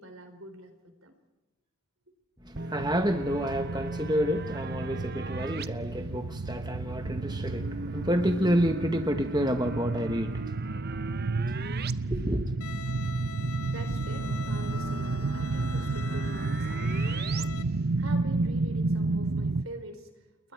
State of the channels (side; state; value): both; normal; correlation 0.74